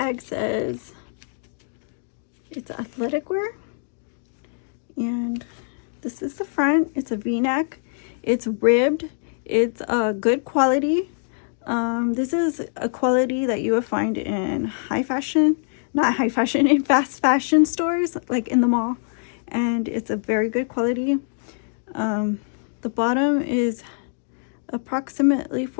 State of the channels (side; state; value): right; silent; digital silence